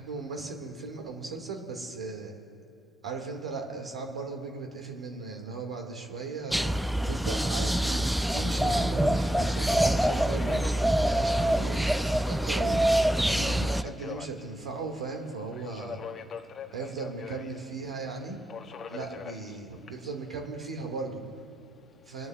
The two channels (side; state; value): both; normal; correlation 0.86